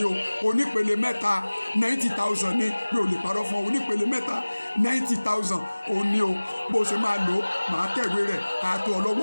o onípele mẹ́ta 90,000 ní mi ò lè parọ́ fún ọ onípele mẹ́ta 90,000 ò ní o bó ṣe máa lò ó máa tẹ̀wé rẹ̀ àtò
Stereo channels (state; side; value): inverted; both; correlation -1.00